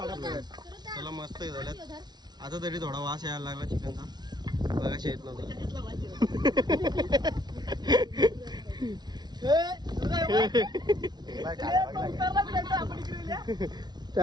प्रेम चला मस्त झाल्यात. आता तरी थोडा वास यायला लागला चिकनचा. बघाशी येत नव्हता.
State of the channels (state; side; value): late; left; 0.20 ms